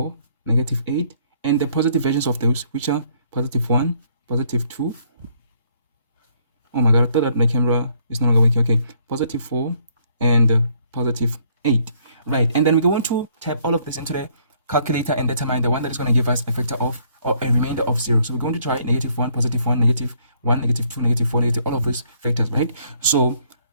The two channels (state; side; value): inverted; both; correlation -0.66